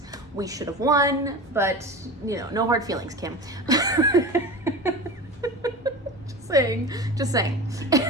We should have won, but, you know, no hard feelings, Kim. Just saying.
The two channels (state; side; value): normal; both; correlation 0.30